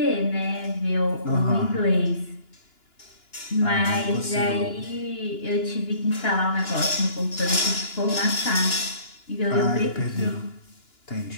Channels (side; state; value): right; late; 2.9 ms